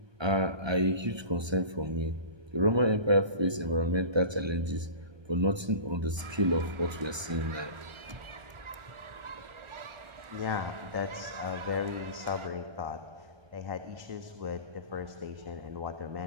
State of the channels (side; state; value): left; late; 1.2 ms